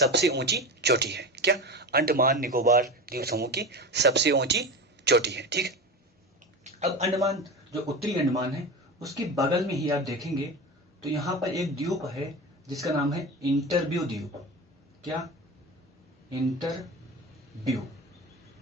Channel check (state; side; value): normal; both; correlation 0.26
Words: ऊंची चोटी है। क्या? अंडमान निकोबार द्वीप समूह की सबसे ऊंची चोटी है, ठीक है। अब अंडमान जो उत्तरी अंडमान है उसके बगल में ही आप देखेंगे तो यहां पर एक द्वीप है जिसका नाम है इंटरव्यू द्वीप। क्या? इंटरव्यू